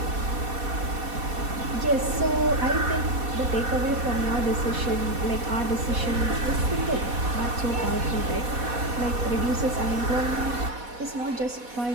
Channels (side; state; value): left; late; 4.1 ms